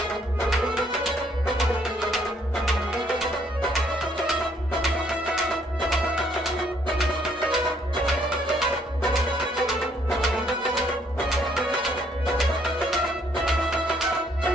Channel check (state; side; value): normal; both; correlation 0.67